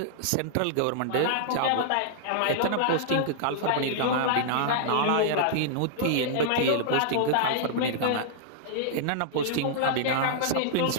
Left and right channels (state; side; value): different; both; correlation -0.01